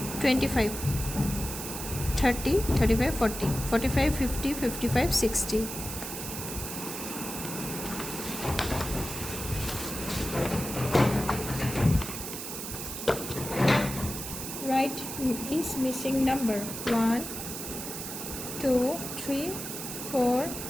25 30 35 40 45 50 55 60. Write is missing number. 1 2 3 4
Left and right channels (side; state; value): right; noise; hiss, 7 dB below the sound